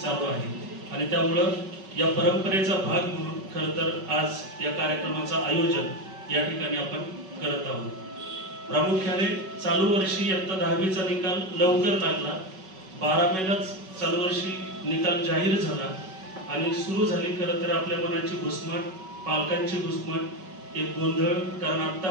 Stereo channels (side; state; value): left; late; 5.3 ms